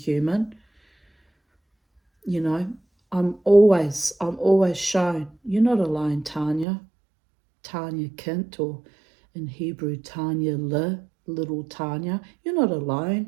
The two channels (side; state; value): left; drops out; at 6.7 s